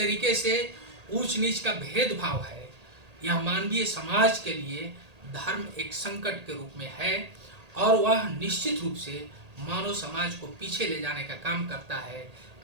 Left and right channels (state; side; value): late; left; 1.8 ms